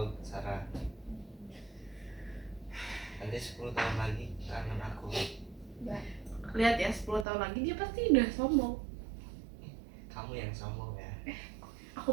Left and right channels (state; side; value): drops out; left; at 7.2 s